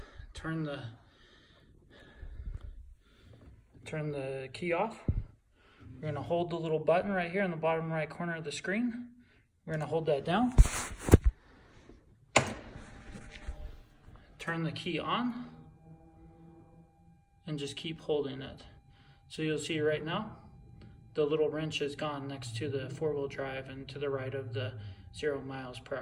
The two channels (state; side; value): identical; both; correlation 1.00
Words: turn the key off. We're gonna hold the little button right here in the bottom right corner of the screen. We're gonna hold that down. Turn the key on and just keep holding it. So you'll see right now, the little wrench is gone next to the 4-wheel drive and to the right of the 0 miles per